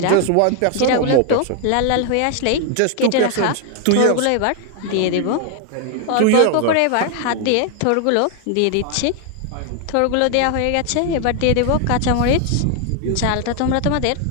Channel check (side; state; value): both; different; correlation 0.00